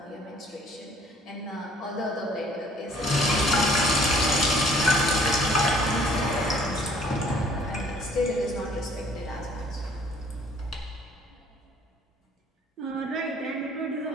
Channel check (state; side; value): normal; both; correlation 0.58